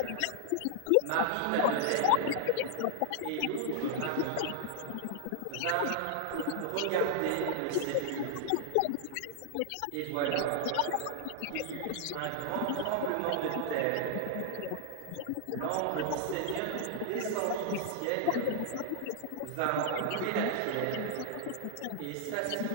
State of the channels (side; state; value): both; different; correlation 0.00